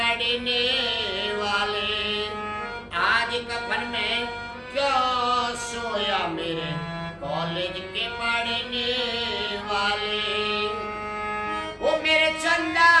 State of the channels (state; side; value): identical; both; correlation 1.00